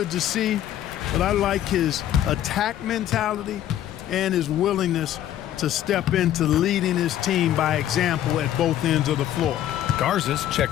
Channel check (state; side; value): quieter; right; 11.8 dB